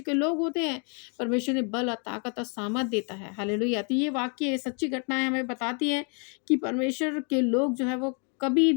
के लोग होते हैं, परमेश्वर ने बल और ताकत और सामर्थ देता है। हालेलुया। तो ये वाक्य सच्ची घटनाएँ हमें बताती हैं कि परमेश्वर के लोग जो है वो कभी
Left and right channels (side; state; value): right; quieter; 38.8 dB